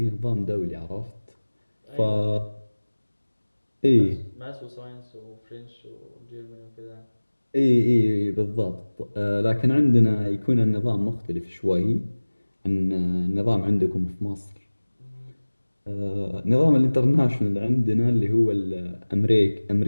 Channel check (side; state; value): both; inverted; correlation -1.00